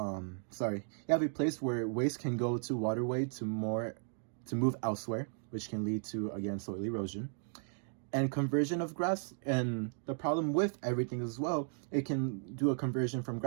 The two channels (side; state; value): left; silent; 54 dB below the other